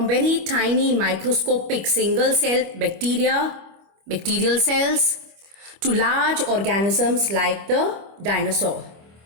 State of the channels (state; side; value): late; left; 25 ms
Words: very tiny microscopic single cell bacterial cells, to large organisms like the dinosaur.